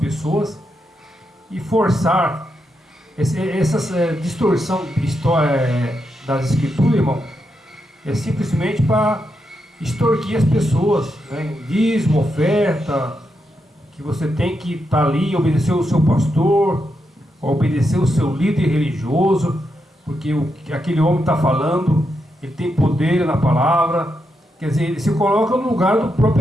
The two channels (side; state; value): both; normal; correlation 0.84